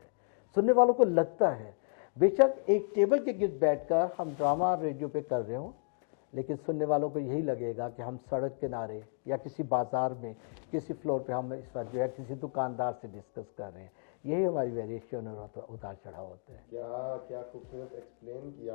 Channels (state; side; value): silent; right; digital silence